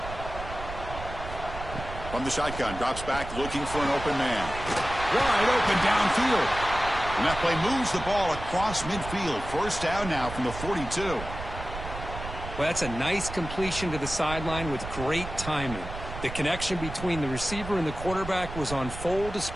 From the shotgun, drops back looking for an open man. Wide open downfield. And that play moves the ball across midfield. First down now from the 42. Well, that's a nice completion to the sideline with great timing. The connection between the receiver and the quarterback was on full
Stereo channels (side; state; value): right; noise; rumble, 9 dB below the sound